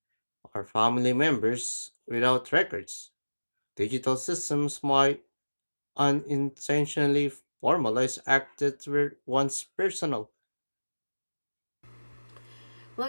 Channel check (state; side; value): inverted; both; correlation -1.00